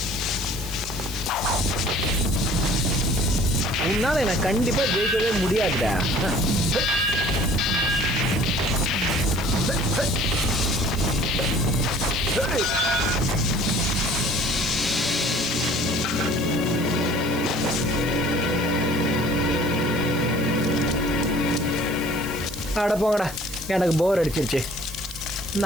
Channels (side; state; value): right; noise; hiss, 15 dB below the sound